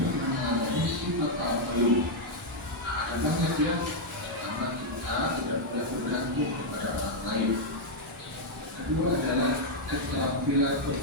mengalami sifat Al-Qayyum? Ada banyak ya. Pertama, kita tidak boleh bergantung kepada orang lain. Kedua adalah keterampilan untuk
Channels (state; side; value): normal; both; correlation -0.02